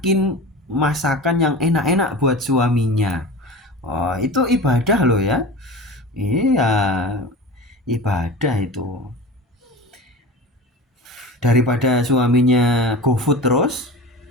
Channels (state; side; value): normal; both; correlation 0.33